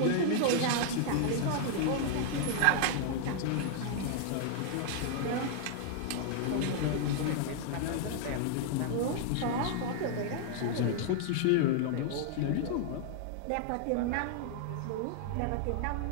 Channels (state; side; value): different; both; correlation -0.01